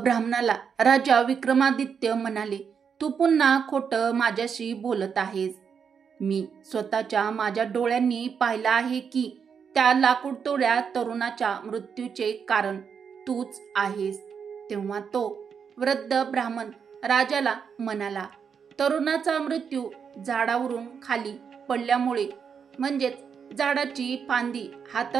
राजा विक्रमादित्य म्हणाले, तू पुन्हा खोटं माझ्याशी बोलत आहेस. मी स्वतःच्या माझ्या डोळ्यांनी पाहिलं आहे की त्या लाकूडतोड्या तरुणाच्या मृत्यूचे कारण तूच आहेस. तेव्हा तो वृद्ध ब्राह्मण राजाला म्हणाला, तरुणाचा मृत्यू झाडावरून खाली पडल्यामुळे म्हणजेच झाडाची फांदी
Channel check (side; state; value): left; quieter; 6.7 dB